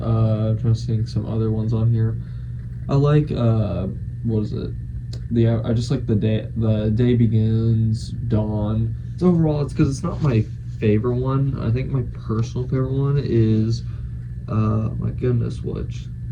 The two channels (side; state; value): both; identical; correlation 1.00